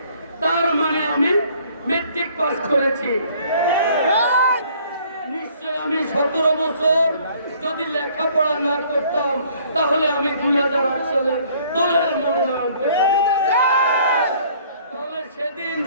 তার মানে আমি মেট্রিক পাস করেছি। নিশ্চয় আমি 17 বছর যদি লেখাপড়া না করতাম তাহলে আমি 2008 সালে দলের মনোনয়ন পেতাম। তাহলে সেদিন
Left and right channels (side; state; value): both; inverted; correlation -0.58